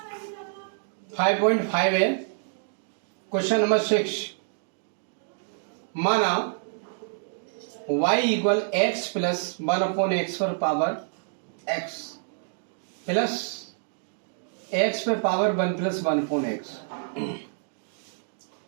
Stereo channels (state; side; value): silent; left; digital silence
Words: 5.5 है। क्वेश्चन नंबर 6, माना y equal x plus 1/x पर पावर x प्लस x पे पावर 1 प्लस 1/x।